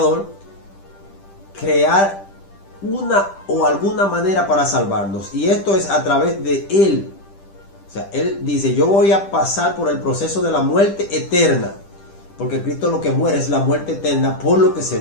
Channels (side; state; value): right; late; 10 ms